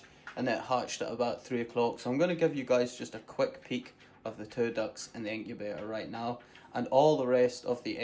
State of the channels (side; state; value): both; identical; correlation 1.00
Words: and it hatched at about 3 o'clock. So I'm going to give you guys just a quick peek of the 2 ducks in the incubator right now. And all the rest of the